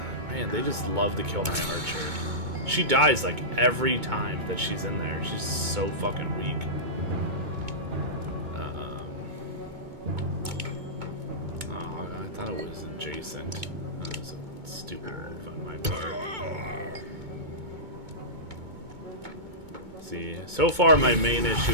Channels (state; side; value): late; left; 2.2 ms